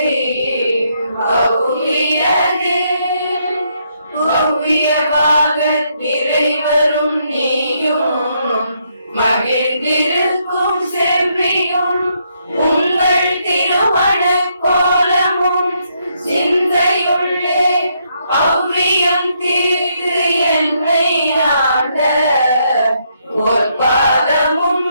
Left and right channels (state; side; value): inverted; both; correlation -0.75